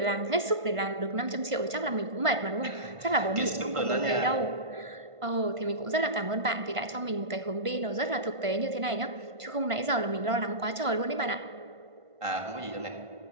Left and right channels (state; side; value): late; left; 1.5 ms